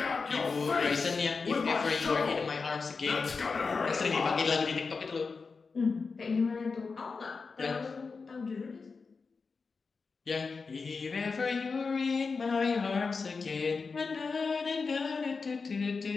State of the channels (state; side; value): quieter; right; 4.7 dB